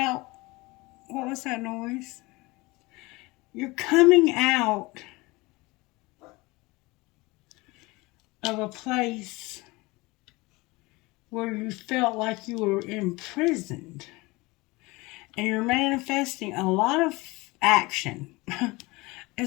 What was that noise? You're coming out of a place where you felt like you were imprisoned. And you're manifesting a lot of action.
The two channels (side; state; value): right; quieter; 23.0 dB